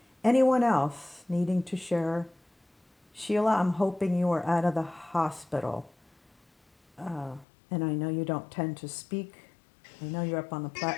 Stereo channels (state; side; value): drops out; right; at 7.5 s